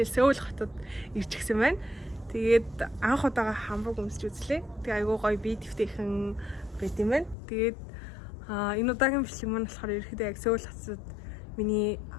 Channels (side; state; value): right; drops out; at 7.4 s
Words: Сөүл хотод ирж гисэн байна. Тэгээд анх удаага хамбург өмсч үзлээ. Тэгээ айгүй гоё бие дэвтэйхэн байт юм байна. Тэгээд энэ удаагийн бичлэг маань болохоор ерөөхдөө яг Сөүл хотод миний